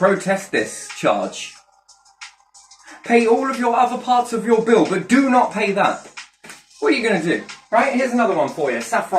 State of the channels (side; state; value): both; identical; correlation 1.00